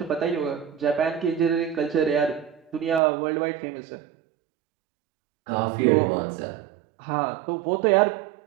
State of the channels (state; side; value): drops out; left; at 3.0 s